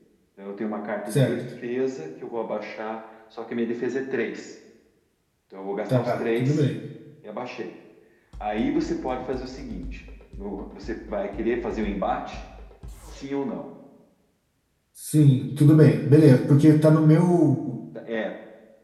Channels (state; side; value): identical; both; correlation 1.00